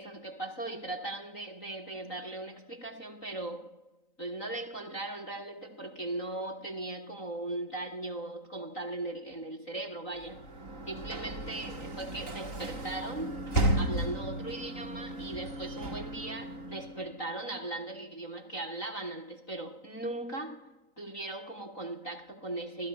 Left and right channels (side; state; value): right; late; 3.9 ms